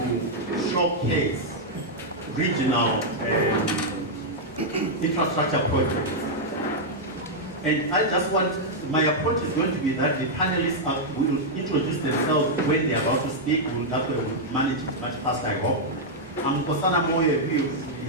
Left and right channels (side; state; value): both; normal; correlation -0.04